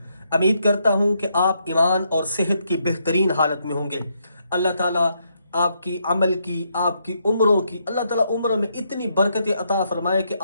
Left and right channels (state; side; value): inverted; both; correlation -0.77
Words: उम्मीद करता हूँ कि आप ईमान और सेहत की बेहतरीन हालत में होंगे। अल्लाह ताला आपकी अमल की, आपकी उम्रों की, अल्लाह ताला उम्र में इतनी बरकतें अता फरमाए कि